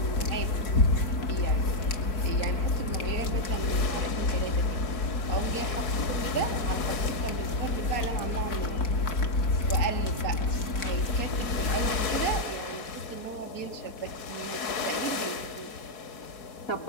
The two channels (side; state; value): right; late; 4.7 ms